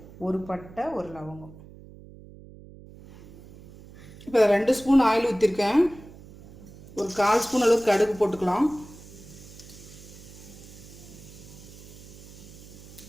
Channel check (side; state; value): right; noise; hum, 19 dB below the sound